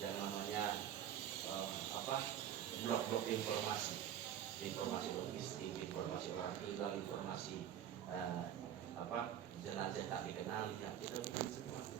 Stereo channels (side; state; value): left; quieter; 10.3 dB